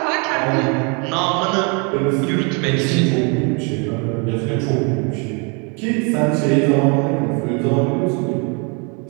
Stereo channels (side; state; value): left; quieter; 33.8 dB